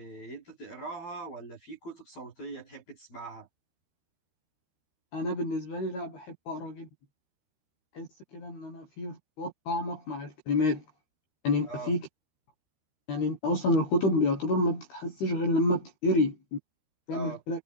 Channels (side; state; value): right; late; 13 ms